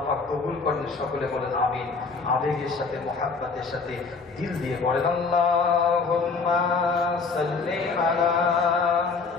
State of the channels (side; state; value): right; quieter; 4.5 dB